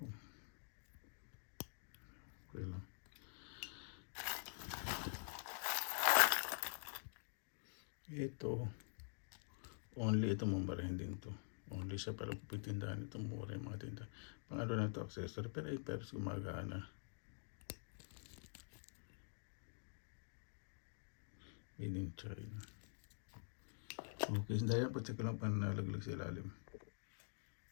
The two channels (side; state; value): right; silent; digital silence